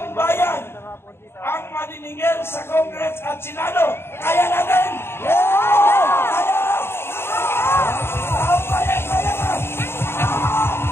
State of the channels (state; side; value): late; right; 0.11 ms